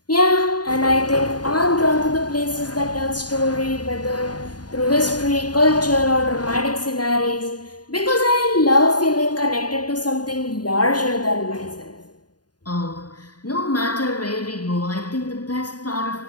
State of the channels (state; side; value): late; right; 0.69 ms